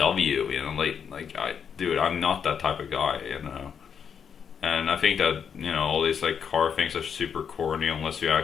dude, I'm not that type of guy. And I think that all these like car things are super corny unless you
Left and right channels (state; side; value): quieter; right; 7.3 dB